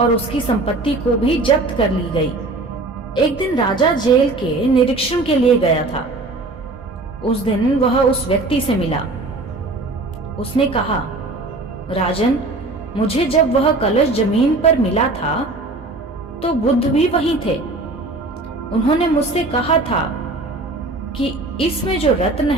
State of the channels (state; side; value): quieter; left; 3.1 dB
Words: उसकी संपत्ति को भी जब्त कर ली गई। एक दिन राजा जेल के निरीक्षण के लिए गया था। उस दिन वह उस व्यक्ति से मिला। उसने कहा, राजन, मुझे जब वह कलश जमीन पर मिला था तो बुद्ध भी वहीं थे। उन्होंने मुझसे कहा था कि इसमें जो रत्न